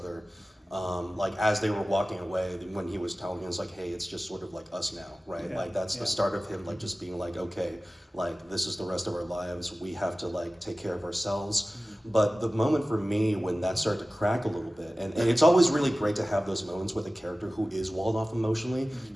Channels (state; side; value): normal; both; correlation 0.96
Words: As they were walking away, when he was telling us hey, it's just sort of us now, right? Yeah, That's the start of him just being okay, this is the rest of our lives. We have to take care of ourselves. But the moment for me when that started to crack a little bit, and it's always really great to have those moments with a character who is walled off emotionally